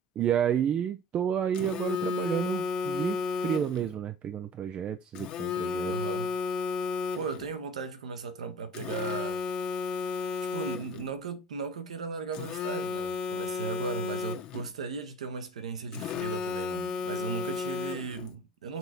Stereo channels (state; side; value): normal; both; correlation 0.43